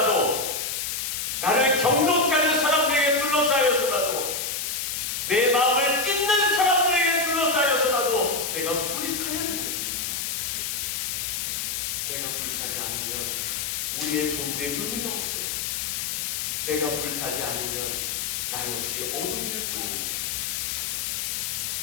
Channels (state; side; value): noise; left; hiss, 2 dB below the sound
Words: 나를 경록케 하는 사람들에게 둘러싸여서라도, 내 마음을 찢는 사람들에게 둘러싸여서라도 내가 불이 타야 됩니다. 내가 불타지 않으면 우리의 존재의 의미가 없어요. 내가 불타지 않으면 나 역시 어둠일 뿐입니다.